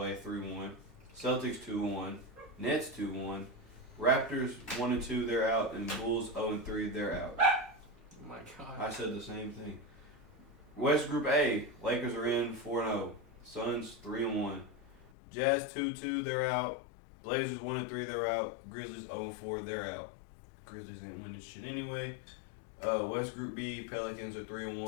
3-1. Celtics 2-1. Nets 2-1. Raptors 1-2, they're out, and Bulls 0-3, they're out. Oh my god. I said the same thing. West Group A, Lakers are in 4-0. Suns 3-1. Jazz 2-2, they're out. Blazers 1-3, they're out. Grizzlies 0-4, they're out. Grizzlies ain't winning shit anyway. West Group B, Pelicans are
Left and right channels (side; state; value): right; drops out; at 15.1 s